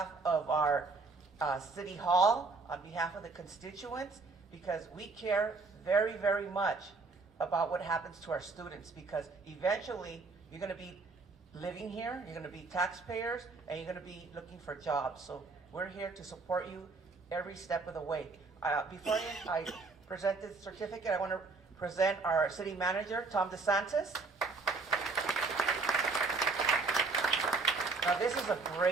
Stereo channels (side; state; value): left; quieter; 4.0 dB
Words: of our city hall, on behalf of the constituents, because we care very, very much about what happens to our students, because eventually you're going to be living here, you're going to be taxpayers, and you're going to be looking for jobs. So we're here to support you every step of the way. Before I present this certificate, I want to present our city manager, Tom DeSantis. Now this is a